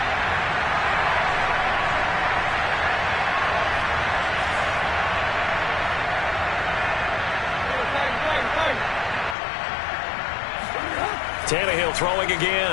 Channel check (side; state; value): right; drops out; at 9.3 s